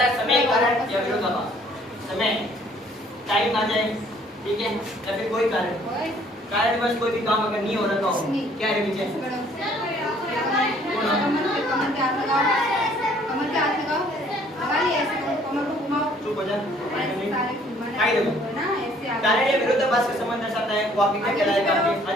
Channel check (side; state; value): both; normal; correlation 0.60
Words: समय, कारण या विरोधाभास। समय, टाइम आ जाए, ठीक है, या फिर कोई कारण बस कोई भी काम अगर नहीं हो रहा हो, क्या है विजय? चुप हो जा। कारण या विरोधाभास का संबंध दर्शाता है, वो आपके क्या कहलाएगा? आपके